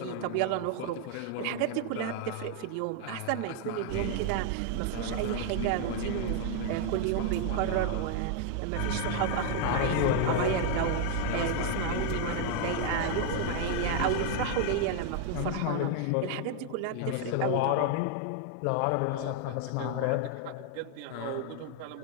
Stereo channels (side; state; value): both; different; correlation 0.00